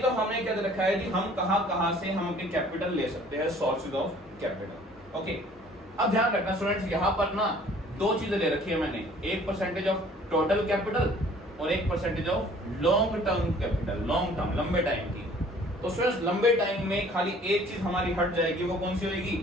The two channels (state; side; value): normal; both; correlation 0.54